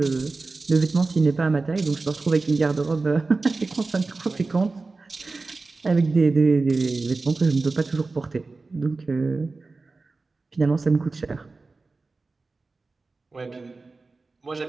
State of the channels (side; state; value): left; quieter; 3.7 dB